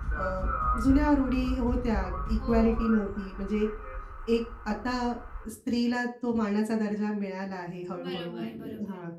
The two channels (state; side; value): identical; both; correlation 1.00